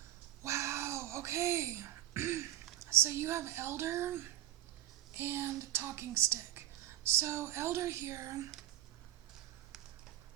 Wow. Okay. So you have Elder and Talking Stick. So Elder here,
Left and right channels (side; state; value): left; quieter; 13.9 dB